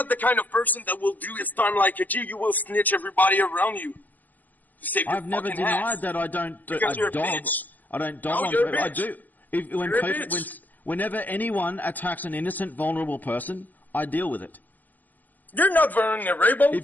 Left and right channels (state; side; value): late; right; 0.083 ms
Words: the kind of person that will do his time like a G. You will snitch everybody around you. I've never denied that I don't dob. I don't dob. I do. Whenever anyone attacks an innocent, vulnerable person, I deal with it. You're not